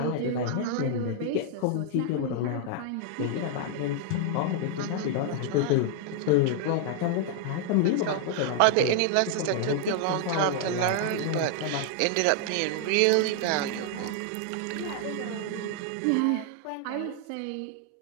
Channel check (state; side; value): different; both; correlation 0.00